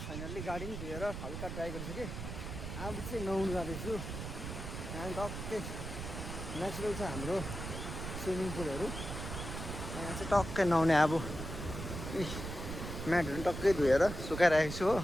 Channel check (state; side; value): noise; right; rumble, 6 dB below the sound